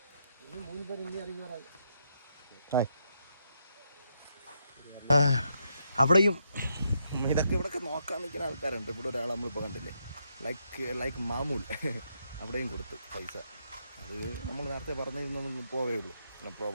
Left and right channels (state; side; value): inverted; both; correlation -0.79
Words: 3 പേര് ഇനി ഇറങ്ങി. അവിടെയും ഇതൊക്കെ ഇവിടെയൊക്കെ നോക്കാൻ നിൽക്കുന്ന ആൾക്കാരുണ്ട്. ഇവിടെ ഒരാൾ നമ്മളിപ്പോൾ കണ്ടില്ലേ, ലൈക്ക് മാമൂൽ, അവിടെയും കൊടുത്ത് പൈസ. അത് നമ്മൾ നേരത്തെ പറഞ്ഞിരുന്നൊന്നും പോവേ ഉള്ളൂ, നോ